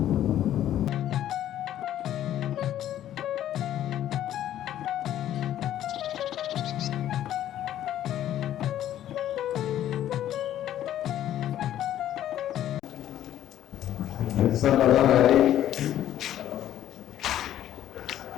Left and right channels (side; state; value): right; quieter; 11.9 dB